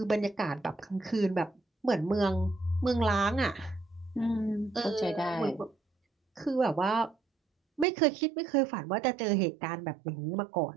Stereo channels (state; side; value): drops out; left; at 7.9 s